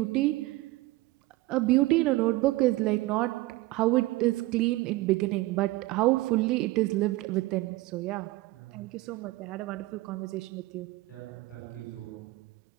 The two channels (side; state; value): left; quieter; 19.4 dB